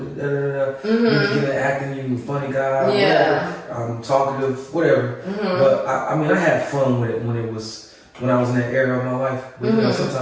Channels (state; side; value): identical; both; correlation 1.00